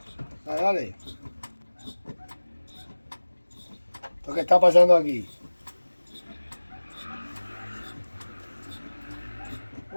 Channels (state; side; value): inverted; both; correlation -1.00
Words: Dale, dale. ¿Lo que está pasando aquí?